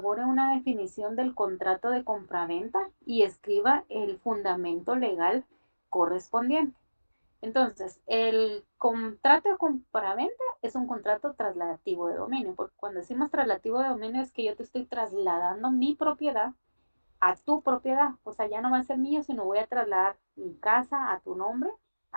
una definición del contrato de compraventa y escriba el fundamento legal correspondiente. Entonces, el contrato de compraventa es un contrato trasladativo de dominio, porque cuando decimos trasladativo de dominio es que yo te estoy trasladando mi propiedad a tu propiedad. O sea, ya no va a ser mío, sino voy a trasladar mi casa a tu nombre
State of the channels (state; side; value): inverted; both; correlation -1.00